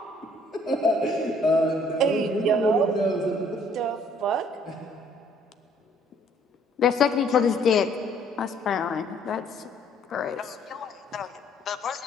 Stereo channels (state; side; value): normal; both; correlation 0.62